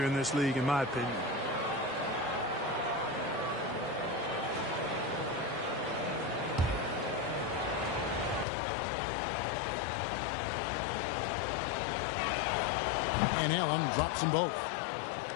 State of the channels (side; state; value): right; drops out; at 8.5 s